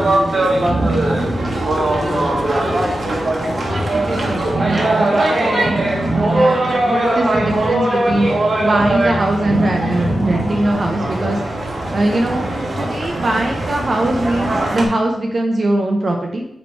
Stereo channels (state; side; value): normal; both; correlation 0.92